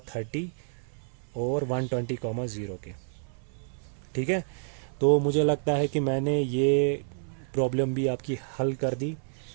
और 120,0 के, ठीक है। तो मुझे लगता है कि मैंने ये प्रॉब्लम भी आपकी हल कर दी,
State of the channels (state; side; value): silent; left; 59 dB below the other